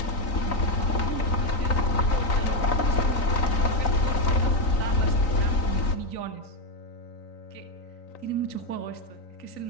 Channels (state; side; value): late; right; 3.9 ms